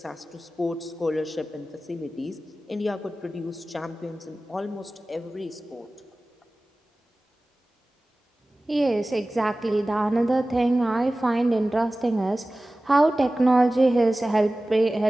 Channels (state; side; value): normal; both; correlation 0.97